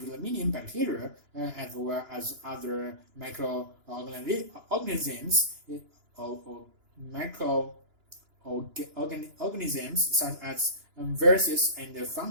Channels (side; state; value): left; late; 2.9 ms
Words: million bacteria, as well as other microorganisms, microorganisms such as viruses and